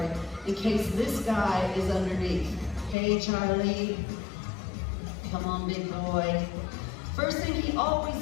in case this guy is underneath. Hey, Charlie. Come on, big boy. First thing he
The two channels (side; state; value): right; drops out; at 3.0 s